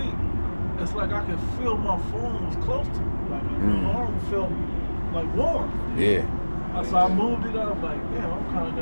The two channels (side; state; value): both; inverted; correlation -1.00